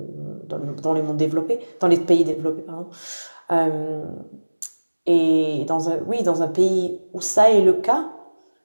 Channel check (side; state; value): both; inverted; correlation -1.00